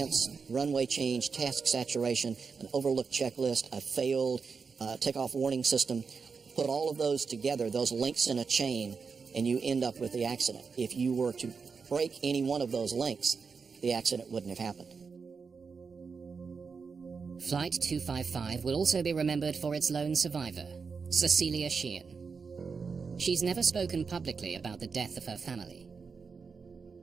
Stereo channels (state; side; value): quieter; left; 5.3 dB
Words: runway change, task saturation, an overlooked checklist, a failed takeoff warning system. Put all of those together, those links in a chain, and you end up with the accident. If you were to break any one of those links, the accident wouldn't have happened. Flight 255 will also be remembered for its lone survivor, Cecilia Sheehan. She's never spoken publicly about the death of her family.